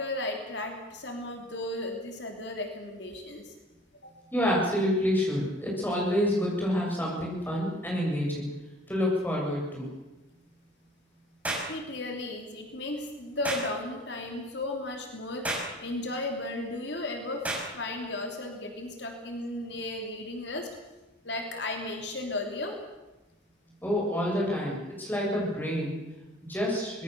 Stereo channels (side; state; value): both; normal; correlation 0.47